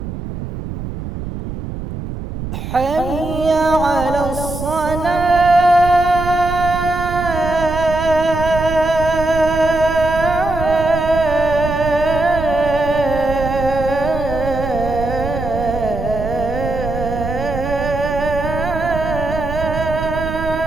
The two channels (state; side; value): noise; right; rumble, 7 dB below the sound